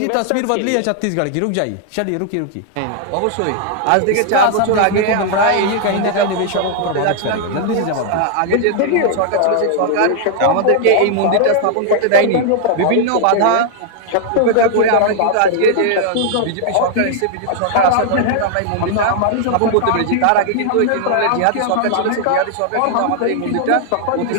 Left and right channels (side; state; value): both; different; correlation 0.00